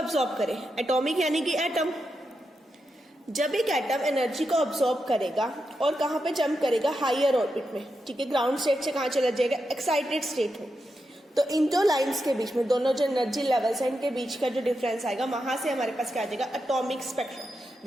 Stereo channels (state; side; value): normal; both; correlation 0.87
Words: करे, एटॉमिक यानी कि एटम, जब एक एटम एनर्जी को अब्सॉर्ब करेगा और कहां पे जंप करेगा, हायर ऑर्बिट में, ठीक है, ग्राउंड स्टेट से कहां चला जाएगा, एक्साइटेड स्टेट में। तो इन दो लाइंस के बीच में, दोनों जो एनर्जी लेवल्स है इनके बीच का जो डिफरेंस आएगा, वहां से हमारे पास क्या आ जाएगा, एटॉमिक स्पेक्ट्रा,